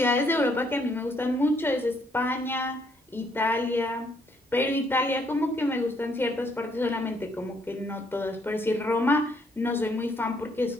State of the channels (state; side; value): normal; both; correlation 0.70